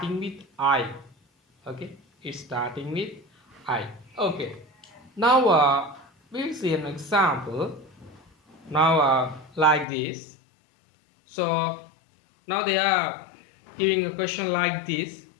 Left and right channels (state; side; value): drops out; right; at 9.9 s